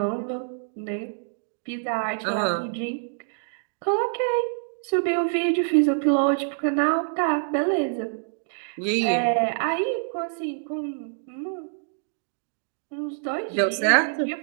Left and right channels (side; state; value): left; silent; digital silence